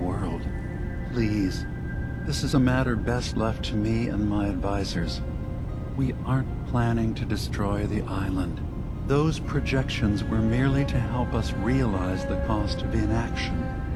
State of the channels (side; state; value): both; identical; correlation 1.00